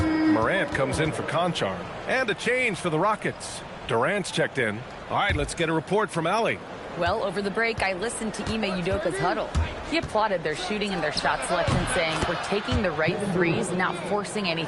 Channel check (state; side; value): identical; both; correlation 1.00